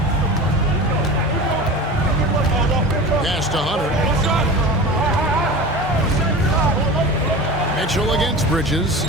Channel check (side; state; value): both; normal; correlation 0.32